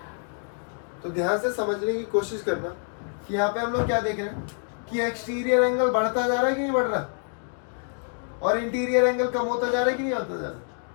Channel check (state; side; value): silent; right; 55 dB below the other